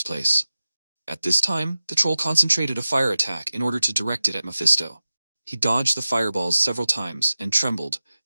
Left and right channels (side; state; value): both; inverted; correlation -0.95